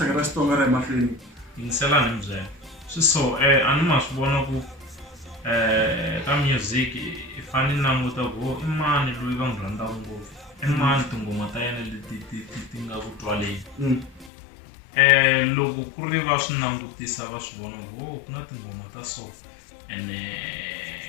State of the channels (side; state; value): right; drops out; at 14.3 s